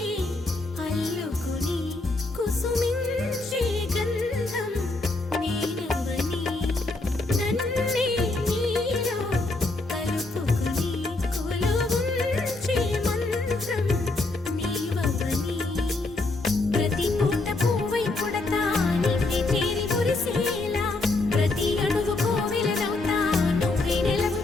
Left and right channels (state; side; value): quieter; right; 3.1 dB